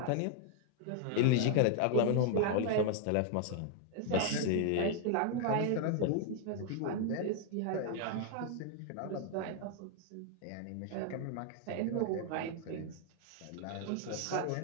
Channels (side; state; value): both; different; correlation 0.00